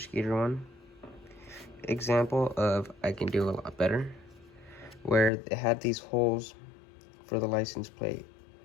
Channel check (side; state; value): right; drops out; at 5.3 s